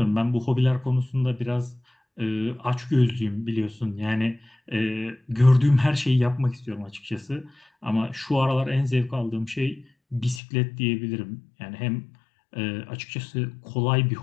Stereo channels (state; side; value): drops out; right; at 10.4 s